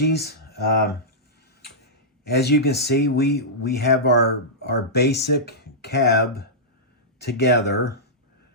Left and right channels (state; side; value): normal; both; correlation -0.13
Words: As you can see, we have our basic cab together.